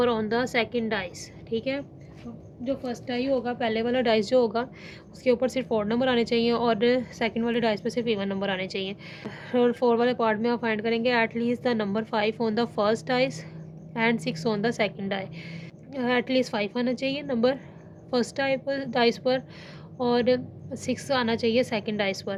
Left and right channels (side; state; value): both; identical; correlation 1.00